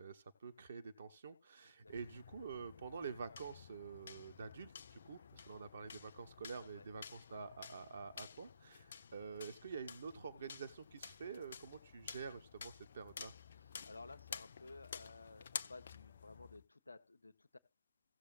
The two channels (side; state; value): both; inverted; correlation -0.74